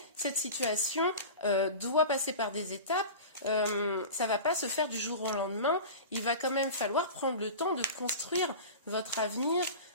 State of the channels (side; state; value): both; inverted; correlation -0.32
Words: cette situation doit passer par des étapes. Ça ne va pas se faire du jour au lendemain. Il va quand même falloir prendre le temps de construire votre avenir